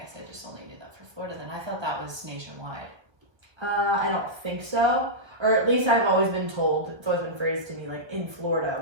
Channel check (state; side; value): late; left; 1.1 ms